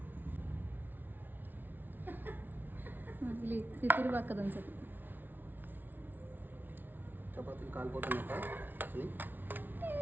తిరుగు పక్కదని చెప్పి చపాతీలు కాలిపోతున్నాక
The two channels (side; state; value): left; late; 0.090 ms